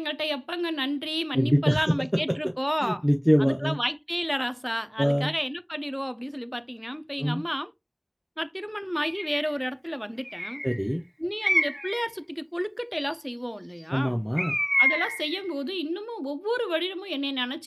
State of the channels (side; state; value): both; identical; correlation 1.00